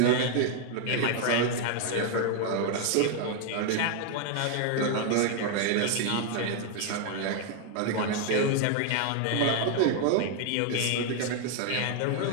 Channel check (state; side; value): different; both; correlation 0.00